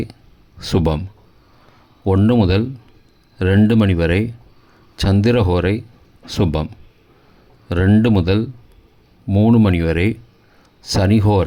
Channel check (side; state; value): both; identical; correlation 1.00